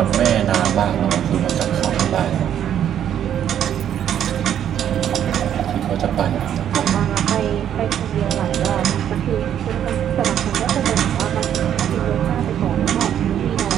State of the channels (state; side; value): quieter; left; 9.9 dB